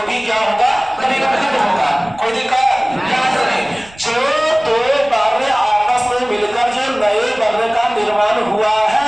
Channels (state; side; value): noise; right; rumble, 23 dB below the sound